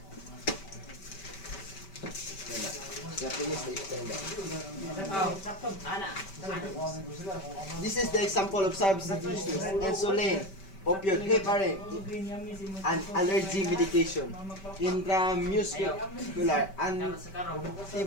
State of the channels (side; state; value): right; late; 5.2 ms